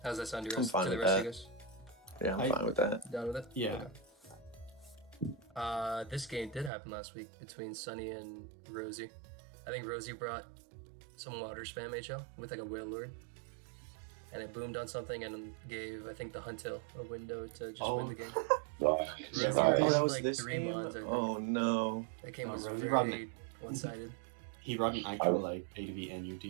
How's that sound to I'm fine the with rest of that. you guys? Yeah, I'm fine with that. Down with it? Yeah. Okay. This game did happen last week between Sunny and Rosie. I think Rosie brought some water spam HL with like a whale lord. And it boomed on something and gave, I think, the Huntail a window to just win the game. Right. Rosie Right. had that was like this 3 game? mons, I think. Oh no. That game was Rosie very one-sided. He brought an actual like ADV NU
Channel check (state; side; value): drops out; left; at 6.7 s